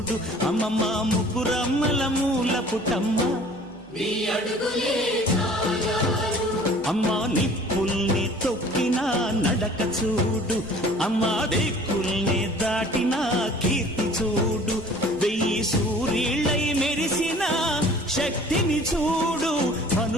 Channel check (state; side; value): noise; right; hum, 25 dB below the sound